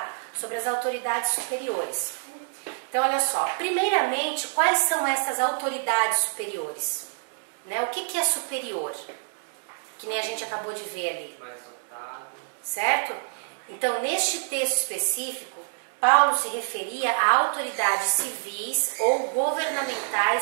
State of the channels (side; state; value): left; silent; 60 dB below the other